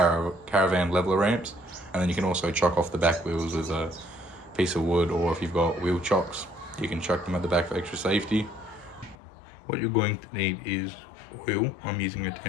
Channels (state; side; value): drops out; right; at 9.2 s